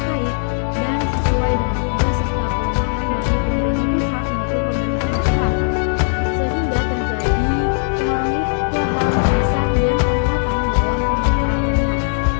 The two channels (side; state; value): right; silent; digital silence